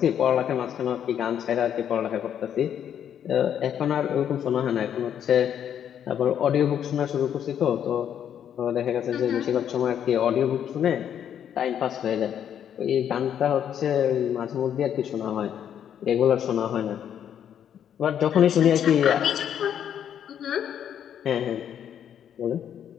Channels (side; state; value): right; quieter; 9.3 dB